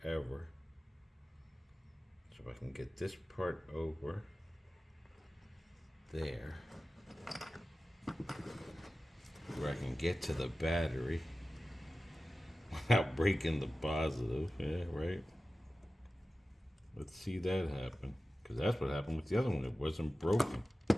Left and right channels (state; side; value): normal; both; correlation 0.95